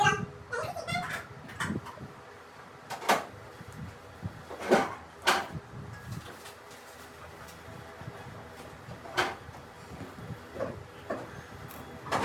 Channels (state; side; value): identical; both; correlation 1.00